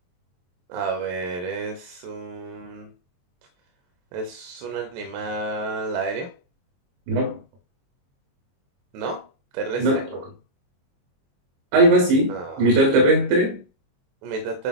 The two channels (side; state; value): left; late; 22 ms